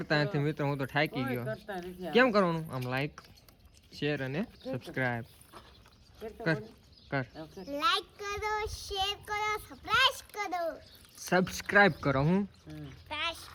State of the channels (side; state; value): both; identical; correlation 1.00